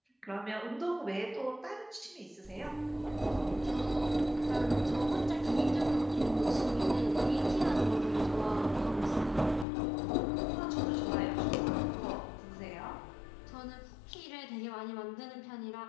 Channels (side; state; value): right; drops out; at 9.7 s